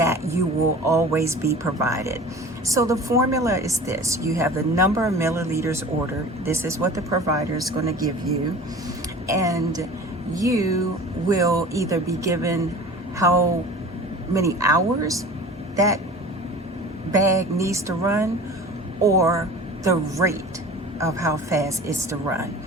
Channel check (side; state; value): both; normal; correlation 0.40